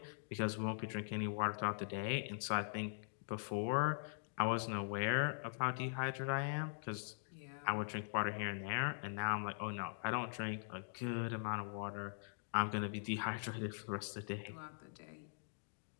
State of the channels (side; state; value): right; silent; digital silence